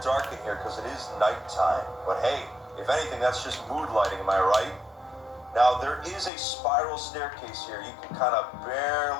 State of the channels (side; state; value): right; drops out; at 6.3 s